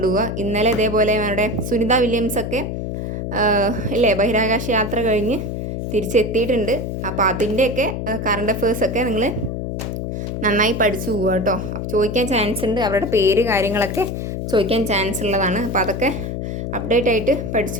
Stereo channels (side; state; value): left; noise; hum, 4 dB below the sound